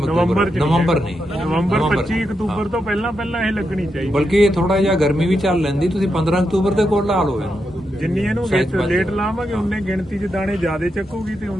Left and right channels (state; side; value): normal; both; correlation 0.85